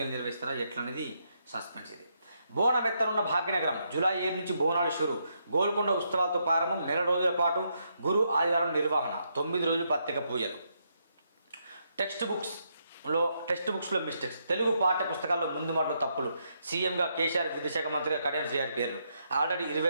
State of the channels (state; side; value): inverted; both; correlation -0.78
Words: నిర్వహిస్తారా ఎట్లనేది సస్పెన్స్. ఇది బోనం ఎత్తనున్న భాగ్యనగరం. జూలై 7 నుంచి బోనాలు షురు. గోల్కొండ ఉత్సవాలతో ప్రారంభం. 1 నెల రోజుల పాటు గురు ఆదివారం నిర్వహణ. 9 రోజులు ప్రత్యేక పూజలు. టెక్స్ట్ బుక్స్లో మిస్టేక్స్. తెలుగు పాఠ్య పుస్తకాల్లో ముందు మాటలో తప్పులు. సీఎంగా కేసీఆర్, విద్యాశాఖ మంత్రిగా కడియం శ్రీహరి పేర్లు. ఆల్రెడీ